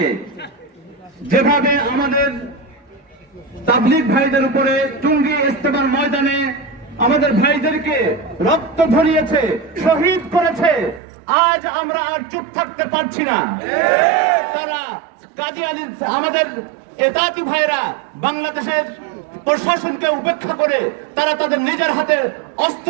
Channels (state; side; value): drops out; left; at 11.0 s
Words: যেভাবে আমাদের তাবলীগ ভাইদের উপরে টুঙ্গি ইস্তেমার ময়দানে আমাদের ভাইদেরকে রক্ত ঝরিয়েছে, শহীদ করেছে, আজ আমরা আর চুপ থাকতে পারছি না। তারা কাদিয়ানী আমাদের ইতাআতী ভাইরা বাংলাদেশের প্রশাসনকে উপেক্ষা করে তারা তাদের নিজের হাতে অস্ত্র